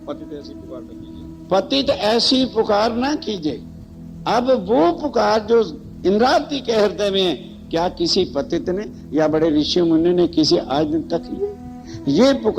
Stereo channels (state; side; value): identical; both; correlation 1.00